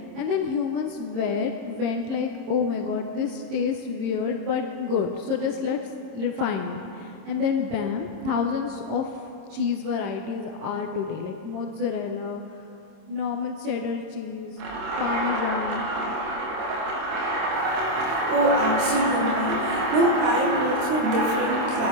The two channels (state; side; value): late; left; 26 ms